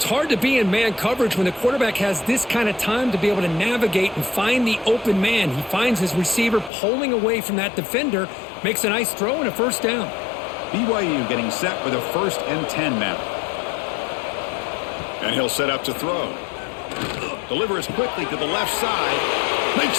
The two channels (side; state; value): right; drops out; at 6.7 s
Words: hard to be in man coverage when the quarterback has this kind of time to be able to navigate and find the open man. He finds his receiver pulling away from that defender, makes a nice throw and a first down. BYU getting set with a 1st and 10 now. And he'll set up to throw. Delivers quickly to the left side. Makes